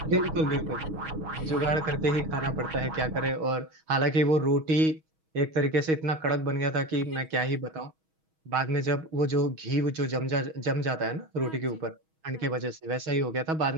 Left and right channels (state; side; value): late; left; 6.3 ms